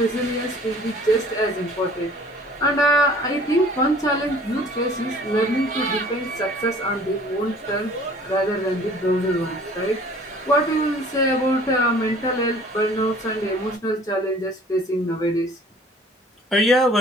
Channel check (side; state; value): both; normal; correlation 0.51